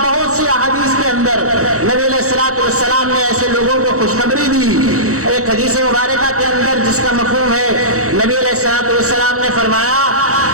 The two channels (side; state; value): left; late; 0.65 ms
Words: سی احادیث کے اندر نبی علیہ الصلوۃ والسلام نے ایسے لوگوں کو خوشخبری دی۔ ایک حدیث مبارکہ کے اندر جس کا مفہوم ہے، نبی علیہ الصلوۃ والسلام نے فرمایا